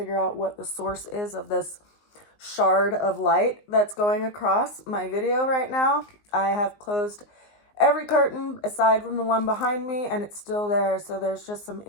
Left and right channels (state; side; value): late; right; 19 ms